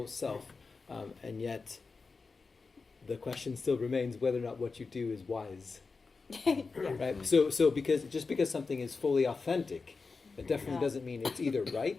self, and yet the question still remains whether or not what you do is wise. Right. So because something is fully authentic, it definitely doesn't mean it's either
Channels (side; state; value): right; quieter; 4.4 dB